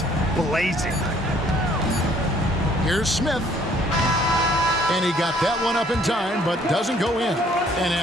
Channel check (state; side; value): normal; both; correlation 0.61